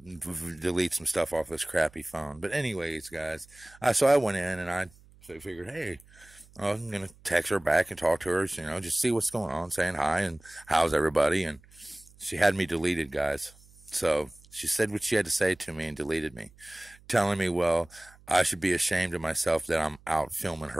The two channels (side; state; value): right; noise; hum, 26 dB below the sound